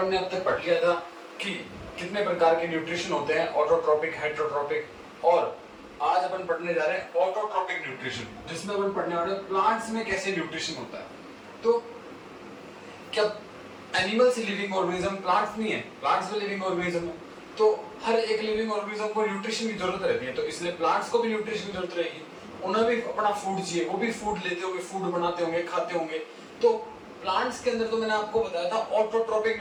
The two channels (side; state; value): both; identical; correlation 1.00